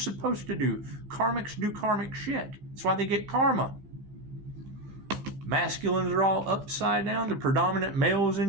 to do. Karmics do karmic shit. That's why they get karma. Masculines are all upside down. The predominant males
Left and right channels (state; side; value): late; left; 15 ms